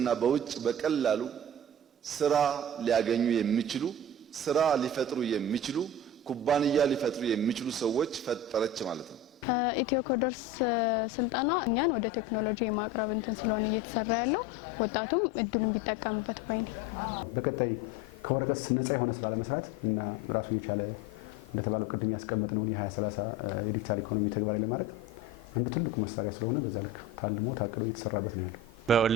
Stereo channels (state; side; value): normal; both; correlation 0.33